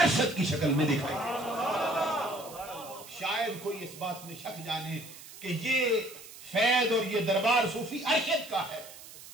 ارشد کی شکل میں دکھائی دے۔ شاید کوئی اس بات میں شک جانے کہ یہ فیض اور یہ دربار صوفی ارشد کا ہے،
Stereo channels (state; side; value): noise; right; hiss, 17 dB below the sound